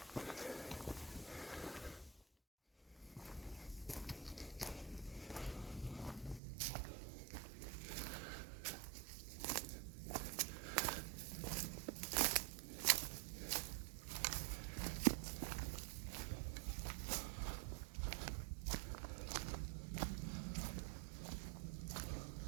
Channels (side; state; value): left; drops out; at 6.4 s